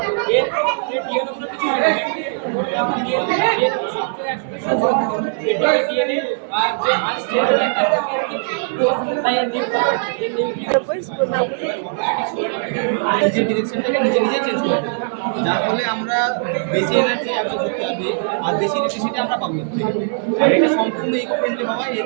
এর ডিএনএ কিছু হয় না, ডিএনএ আর যে আনস্টেবল নিজের ডিরেকশনটাকে নিজে চেঞ্জ করে, যার ফলে আমরা বেশি এনার্জি অ্যাবজর্ব করতে হবে আর বেশি ইলেকট্রিসিটি আমরা পাবো। আর এটা সম্পূর্ণ ইকো ফ্রেন্ডলি হওয়া, এর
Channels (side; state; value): left; silent; 63 dB below the other